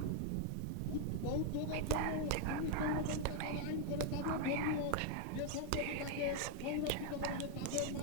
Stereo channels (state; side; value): different; both; correlation 0.00